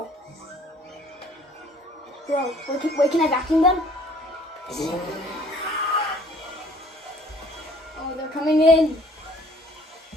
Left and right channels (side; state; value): both; normal; correlation 0.56